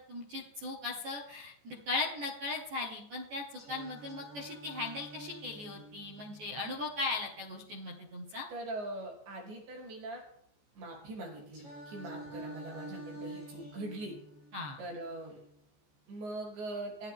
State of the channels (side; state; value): left; late; 14 ms